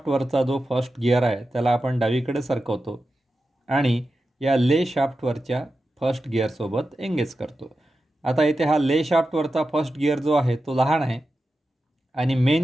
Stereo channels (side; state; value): both; normal; correlation 0.91